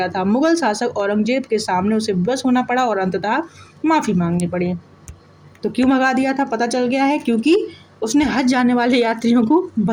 था। मुगल शासक औरंगजेब के सामने उसे विवश होना पड़ा और अंततः माफी मांगनी पड़ी। तो क्यों भगा दिया था पता चल गया है, क्योंकि उसने हज जाने वाले यात्रियों को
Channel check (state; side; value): identical; both; correlation 1.00